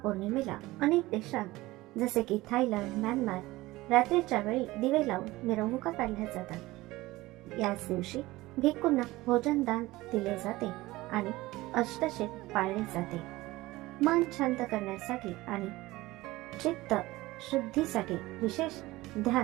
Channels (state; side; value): quieter; left; 19.0 dB